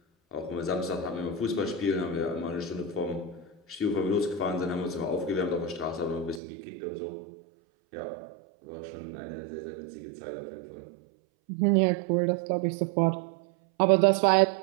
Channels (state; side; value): drops out; left; at 6.4 s